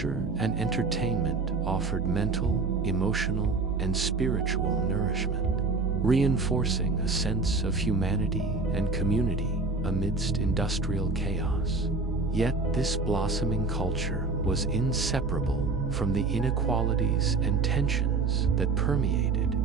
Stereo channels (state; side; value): quieter; left; 3.9 dB